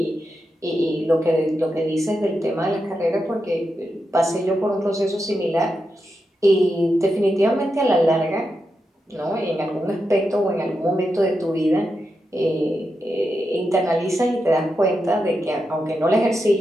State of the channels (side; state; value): both; normal; correlation 0.87